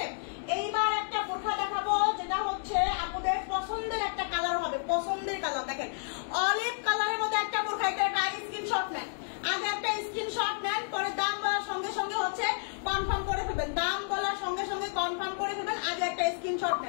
এইবার একটা বোরখা দেখাবো যেটা হচ্ছে আপনাদের পছন্দের একটা কালার হবে, পছন্দের কালার। দেখেন অলিভ কালারের মধ্যে একটা বোরখা, এটা একটা স্ক্রিনশট নেন, আগে একটা স্ক্রিনশট নেন, পরে দাম বলার সঙ্গে সঙ্গে হচ্ছে কনফার্ম করে ফেলবেন, দাম বলার সঙ্গে সঙ্গে কনফার্ম করে ফেলবেন, আগে একটা স্ক্রিনশট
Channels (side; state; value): right; silent; digital silence